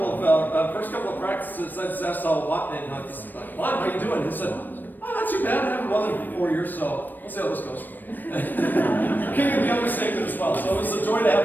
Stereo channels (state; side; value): late; right; 0.090 ms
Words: of practices, I just asked Juan, "Juan, how you doing?" He said, "Oh, not too bad. I haven't run in 4 years, so we'll see how this goes." King of the understatement as well. So it was a joy to have